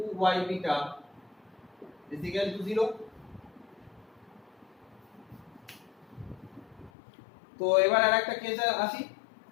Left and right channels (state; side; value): drops out; right; at 6.9 s